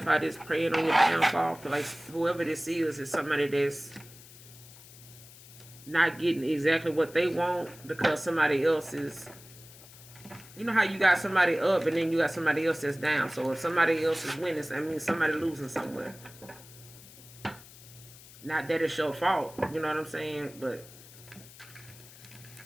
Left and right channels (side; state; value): left; noise; hiss, 20 dB below the sound